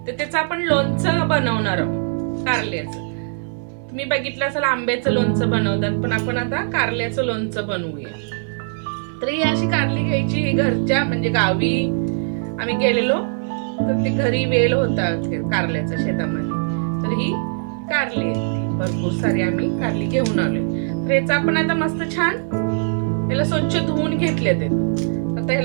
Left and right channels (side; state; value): left; silent; digital silence